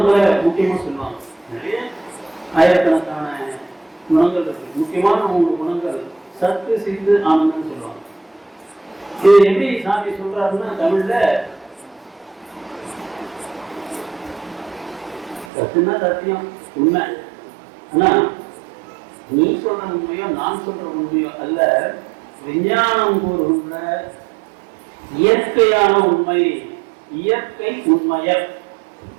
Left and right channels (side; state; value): left; drops out; at 15.5 s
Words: முக்கியமா சொல்லுவாங்க. நிறைய ஆயிரக்கணக்கான குணங்கள் இருக்கு. முக்கியமான 3 குணங்கள் சத்து, சித்து, ஆனந்தம் சொல்லுவாங்க. இது எப்படி சாமி சொல்றாருன்னா, தமிழ்ல சத்துனா சத்தியம், உண்மை. ஆனா நீ சொல்ற உண்மையோ நான் சொல்ற உண்மையோ அல்ல, விஞ்ஞானம் கூறுகின்ற இயற்கையான உண்மை, இயற்கை உண்மையர்.